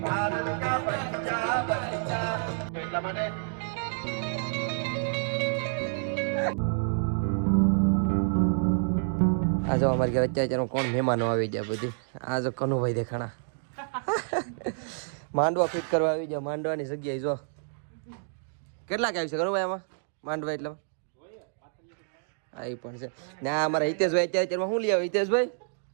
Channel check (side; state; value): left; silent; digital silence